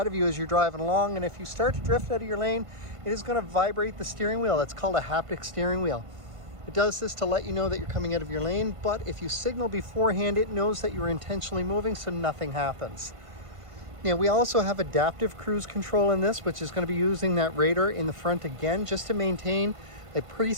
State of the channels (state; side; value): late; left; 1.5 ms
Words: of you as you're driving along. And if you start to drift out of your lane, it is going to vibrate the steering wheel. That's called a haptic steering wheel. It does this to let you know that you're coming out of your lane, but if you signal beforehand, it knows that you're intentionally moving, so nothing happens. Now, we also have adaptive cruise control in this, which is going to be using that radar in the front again, just to maintain a